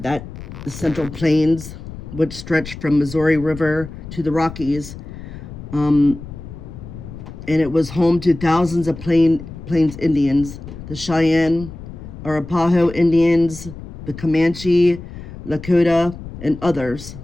Central Plains, which stretched from Missouri River to the Rockies. And it was home to thousands of Plains Indians, the Cheyenne, Arapaho Indians, the Comanche, Lakota, and others.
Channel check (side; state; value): left; noise; rumble, 12 dB below the sound